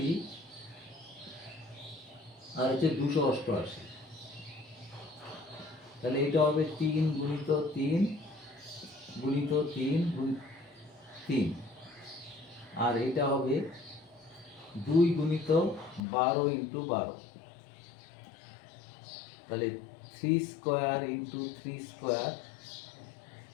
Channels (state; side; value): drops out; right; at 16.0 s